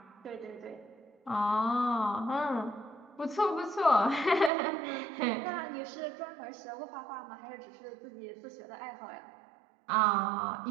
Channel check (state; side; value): drops out; left; at 4.5 s